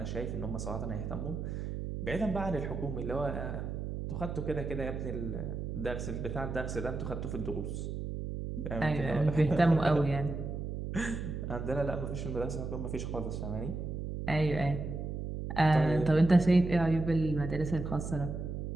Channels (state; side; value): noise; right; hum, 5 dB below the sound